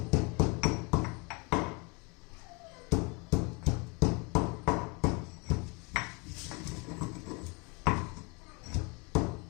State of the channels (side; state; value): right; quieter; 30.4 dB